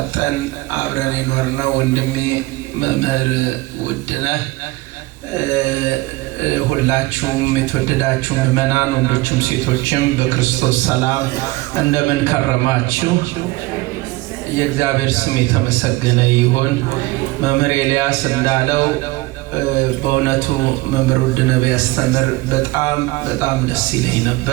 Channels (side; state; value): left; quieter; 20.7 dB